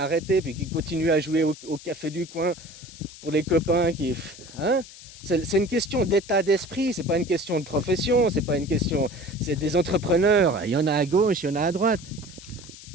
puis qui continue à jouer au café du coin pour les copains qui. Hein? C'est une question d'état d'esprit, c'est pas une question de profession, c'est pas une question. C'est des entrepreneurs. Il y en a à gauche, il y en a à droite.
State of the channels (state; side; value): noise; left; hiss, 17 dB below the sound